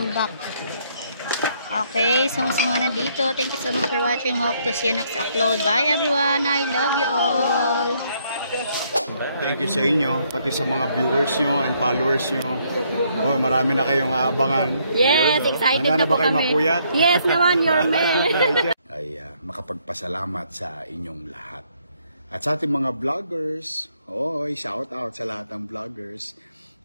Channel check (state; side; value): inverted; both; correlation -0.70